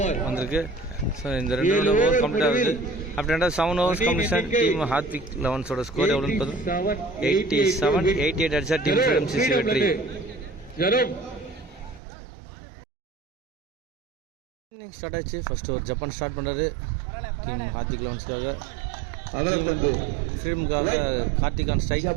வந்திருக்கு. ஸோ இந்த 2 ரன் ஓவர் கம்ப்ளீட் ஆகுது. After end of 7 overs completion team Hardvik லெவன்ஸோட ஸ்கோர் எவ்வளோன்னு பார்த்தோம் 87. 88 அடிச்சா டீம் ஃப்ரீடம் சிசி வெற்றி. இன்னிங் ஸ்டார்ட் ஆச்சு. ஃபர்ஸ்ட் ஒரு ஜப்பான் ஸ்டார்ட் பண்ணுறாரு டீம் ஹார்த்விக் லெவன்ஸ்க்காக. ஃப்ரீடமுக்காக கார்த்திக் ஆன் ஸ்ட்ரைக்.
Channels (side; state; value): left; drops out; at 12.0 s